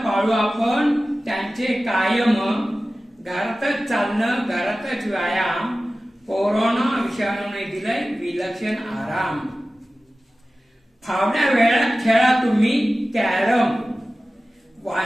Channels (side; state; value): both; normal; correlation 0.96